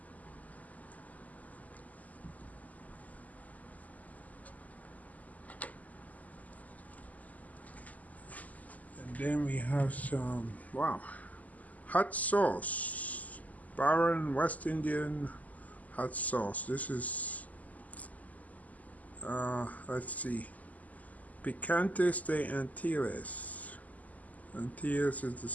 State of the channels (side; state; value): right; late; 0.076 ms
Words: And then we have some, wow, hot sauce. Baron West Indian hot sauce. This is, let's see, Picantes de Antilles. Antilles is the